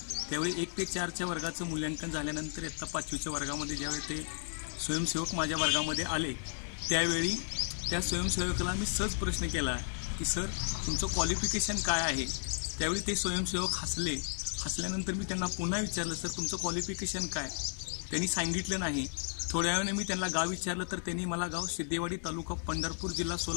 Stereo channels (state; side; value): silent; right; 55 dB below the other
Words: त्यावेळी 1 ते 4च्या वर्गाचं मूल्यांकन झाल्यानंतर इयत्ता 5वीच्या वर्गामध्ये ज्यावेळी ते स्वयंसेवक माझ्या वर्गामध्ये आले त्यावेळी त्या स्वयंसेवकाला मी सहज प्रश्न केला की सर, तुमचं क्वालिफिकेशन काय आहे? त्यावेळी ते स्वयंसेवक हसले। हसल्यानंतर मी त्यांना पुन्हा विचारलं, सर तुमचं क्वालिफिकेशन काय? त्यांनी सांगितलं नाही। थोड्या वेळाने मी त्यांना गाव विचारलं तर त्यांनी मला गाव सिद्धेवाडी, तालुका पंढरपूर, जिल्हा